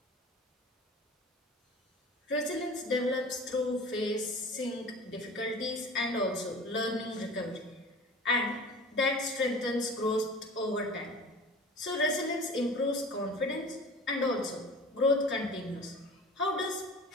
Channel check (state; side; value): normal; both; correlation 0.40